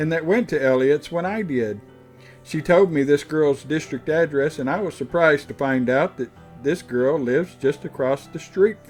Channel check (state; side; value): identical; both; correlation 1.00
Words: that went to Elliott's when I did. She told me this girl's district address, and I was surprised to find out that this girl lives just across the street